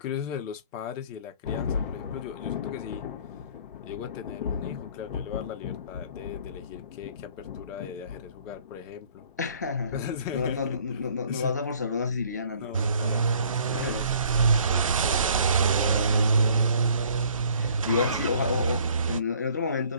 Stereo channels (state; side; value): inverted; both; correlation -0.57